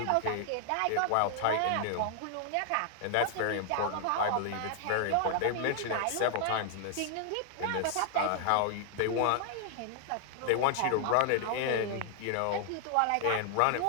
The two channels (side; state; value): both; different; correlation 0.00